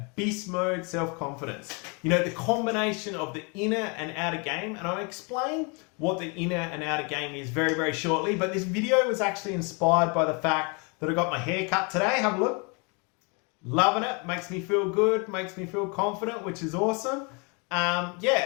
beast mode self-confidence. You know, the combination of the inner and outer game. And I'll explain what the inner and outer game is very, very shortly. But this video was actually inspired by the fact that I got my hair cut today. Have a look. Loving it. Makes me feel good. Makes me feel confident, which is awesome. Yeah,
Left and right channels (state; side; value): quieter; right; 32.6 dB